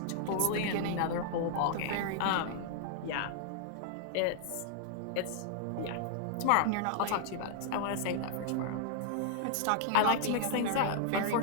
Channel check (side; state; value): both; different; correlation -0.01